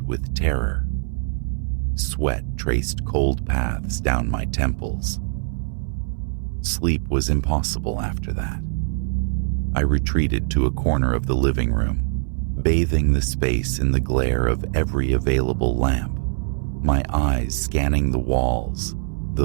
with terror. Sweat traced cold paths down my temples. Sleep was impossible after that. I retreated to a corner of the living room, bathing the space in the glare of every available lamp, my eyes scanning the walls,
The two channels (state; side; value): silent; left; 61 dB below the other